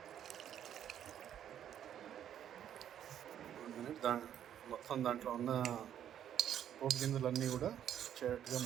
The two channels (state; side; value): quieter; left; 10.0 dB